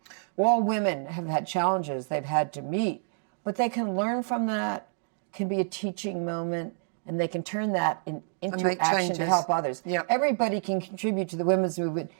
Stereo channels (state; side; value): silent; left; digital silence